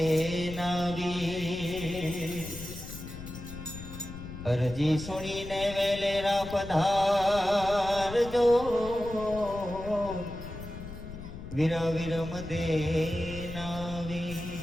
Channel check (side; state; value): left; noise; rumble, 11 dB below the sound